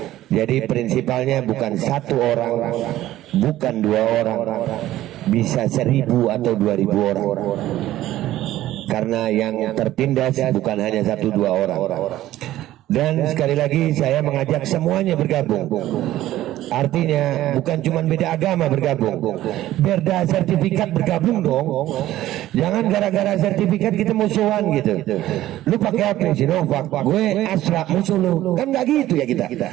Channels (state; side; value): quieter; left; 14.5 dB